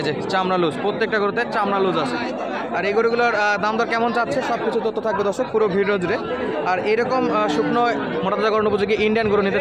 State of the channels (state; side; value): noise; left; hum, 30 dB below the sound